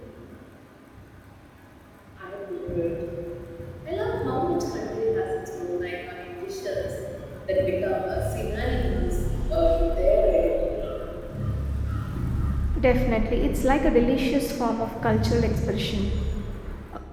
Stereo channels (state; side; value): identical; both; correlation 1.00